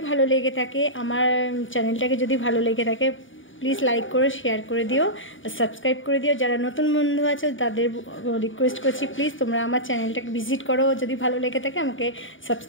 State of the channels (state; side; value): late; right; 0.57 ms